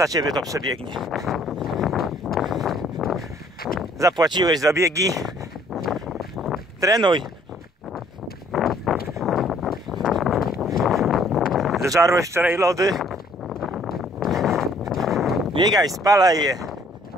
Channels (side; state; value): both; normal; correlation 0.61